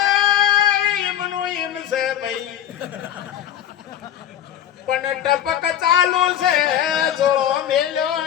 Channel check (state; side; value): quieter; right; 10.5 dB